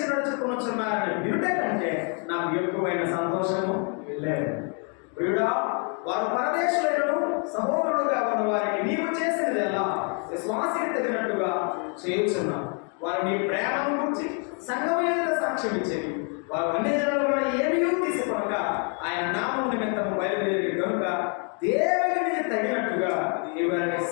నడుచుకుంటున్నారని వినుట కంటే నాకు ఎక్కువైన సంతోషము లేదు. ప్రియుడా, వారు పరదేశులను సహోదరుడుగా ఉన్న వారికి నీవు చేసినది ఎలా విశ్వాసికి తగినట్టుగా చేయుచున్నావు. వారు నీ ప్రేమను గురించి సంఘమైన సాక్ష్యం ఇచ్చేది. వారు అన్ని జనుల ఏమీ తీసుకొనక ఆయన నామం నిమిత్తము బయలుదేరి కనుక దేవునికి తగినట్టుగా వారిని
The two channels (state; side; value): quieter; right; 39.3 dB